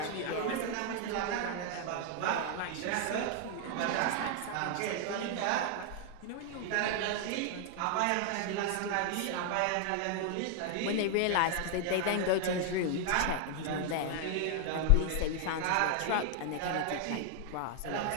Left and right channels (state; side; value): different; both; correlation 0.00